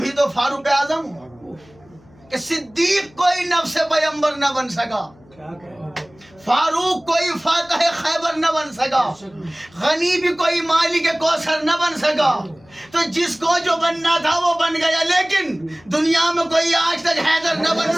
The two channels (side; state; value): left; noise; hum, 28 dB below the sound